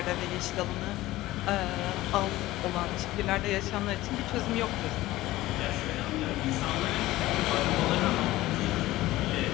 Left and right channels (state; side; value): quieter; right; 17.0 dB